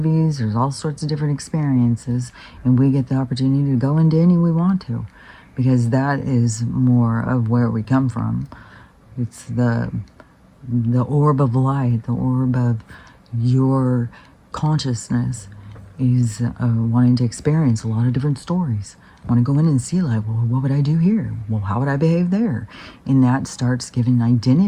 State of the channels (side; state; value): both; identical; correlation 1.00